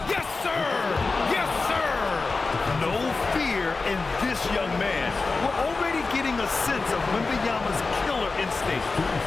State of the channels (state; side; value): quieter; right; 3.9 dB